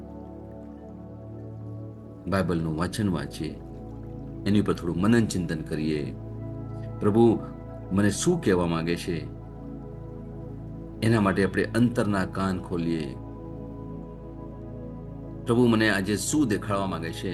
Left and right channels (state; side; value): identical; both; correlation 1.00